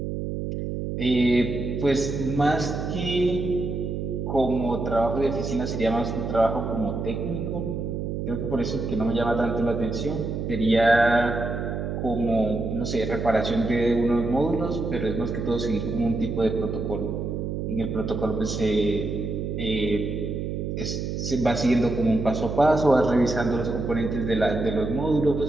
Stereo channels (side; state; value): right; noise; hum, 3 dB below the sound